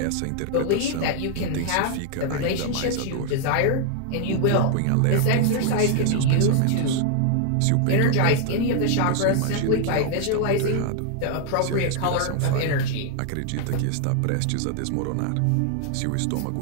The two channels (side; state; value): both; different; correlation 0.00